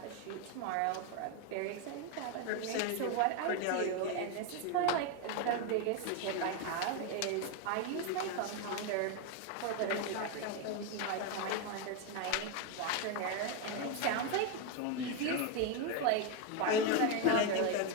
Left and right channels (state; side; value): different; both; correlation 0.02